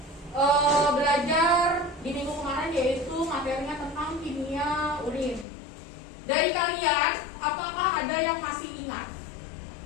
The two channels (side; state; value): right; drops out; at 5.5 s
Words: belajar di minggu kemarin, yaitu materinya tentang kimia urin. Dari kalian, apakah ada yang masih ingat?